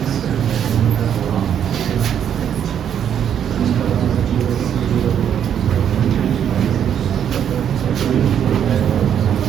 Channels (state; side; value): quieter; left; 9.0 dB